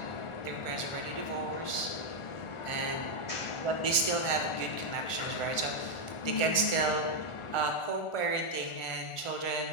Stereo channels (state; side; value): late; right; 1.4 ms